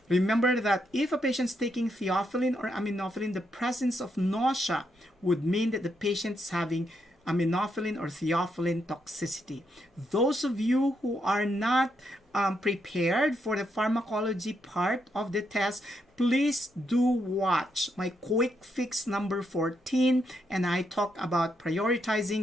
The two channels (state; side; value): normal; both; correlation 0.79